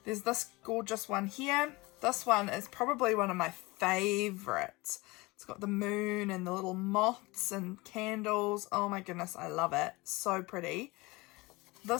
there's this gorgeous one here. This one is probably one of my favorites. It's got the moon and the little moths and candles. Oh my goodness, I love it. So pretty.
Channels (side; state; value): right; quieter; 23.1 dB